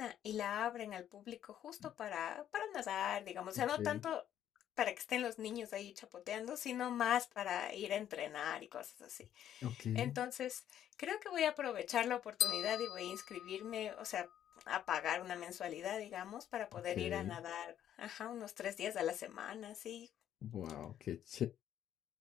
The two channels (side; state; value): right; quieter; 10.7 dB